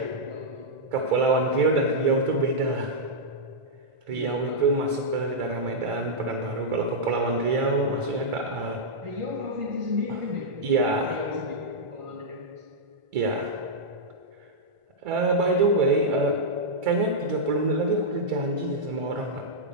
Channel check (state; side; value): late; left; 1.5 ms